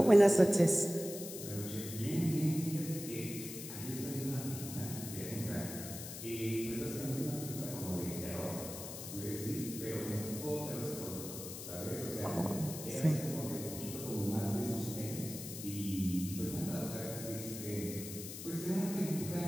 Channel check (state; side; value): noise; left; hiss, 9 dB below the sound